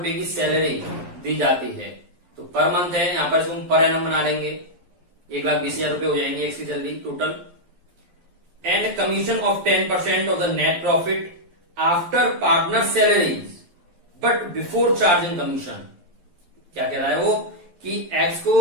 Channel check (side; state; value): left; late; 11 ms